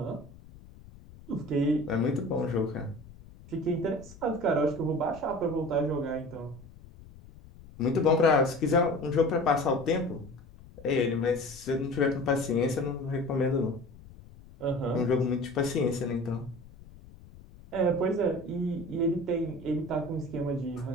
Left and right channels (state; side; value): noise; left; rumble, 20 dB below the sound